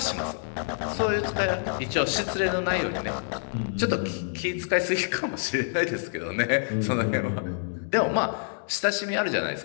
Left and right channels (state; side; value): silent; right; digital silence